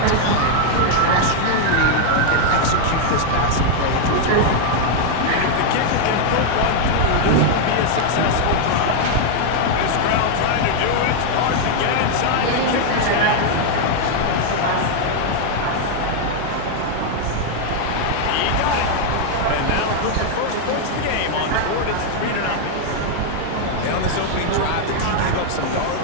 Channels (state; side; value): different; both; correlation 0.00